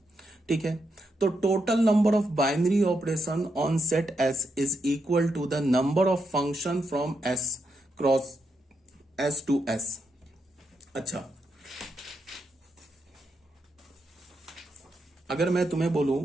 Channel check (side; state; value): both; normal; correlation 0.82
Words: ठीक है। तो total number of binary operation on set S is equal to the number of function from S cross S to S. अच्छा, अगर मैं तुम्हें बोलूं